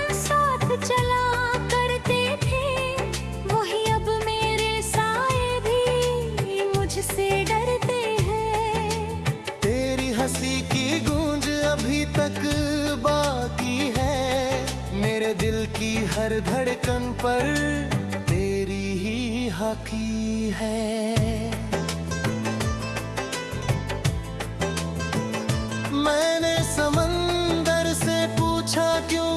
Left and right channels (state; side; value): identical; both; correlation 1.00